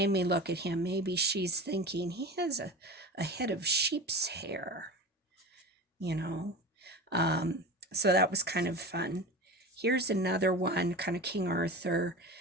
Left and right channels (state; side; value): normal; both; correlation 0.31